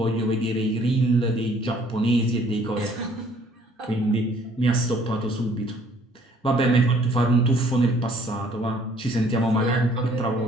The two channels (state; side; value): normal; both; correlation 0.59